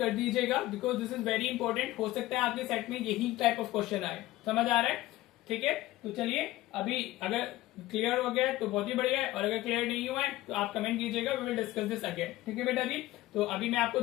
दीजिएगा, because this is very important. हो सकता है आपके सेट में यही टाइप ऑफ क्वेश्चन आए, समझ आ रहा है, ठीक है। तो चलिए अभी अगर क्लियर हो गया है तो बहुत ही बढ़िया है, और अगर क्लियर नहीं हुआ है तो आप कमेंट कीजिएगा, we will discuss this again, ठीक है बेटा जी। तो अभी मैं आपको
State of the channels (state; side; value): quieter; right; 16.7 dB